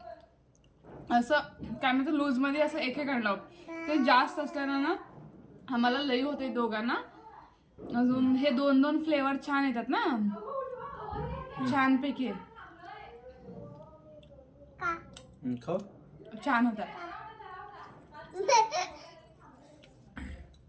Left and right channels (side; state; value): both; identical; correlation 1.00